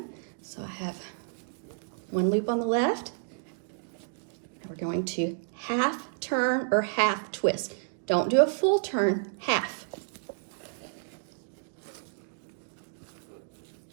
So I have one loop on the left. We're going to half turn or half twist. Don't do a full turn, half.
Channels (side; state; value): left; silent; digital silence